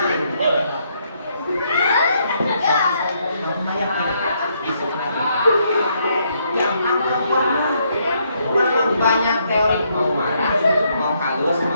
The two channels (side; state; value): both; inverted; correlation -0.74